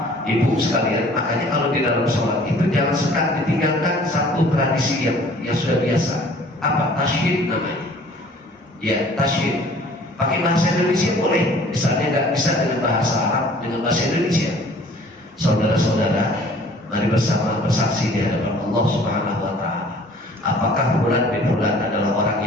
Ibu sekalian? Makanya kalau di dalam sholat itu jangan suka ditinggalkan satu tradisi yang sudah biasa. Apa? Tasyid namanya. Ya, tasyid. Pakai bahasa Indonesia boleh, misalnya nggak bisa dengan bahasa Arab, dengan bahasa Indonesia. Saudara-saudara, mari bersama bersaksi di hadapan Allah Subhanahu wa Ta'ala. Apakah fulan bin fulan adalah orang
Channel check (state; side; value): normal; both; correlation 0.52